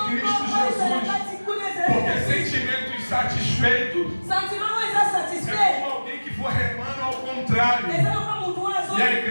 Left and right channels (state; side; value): inverted; both; correlation -1.00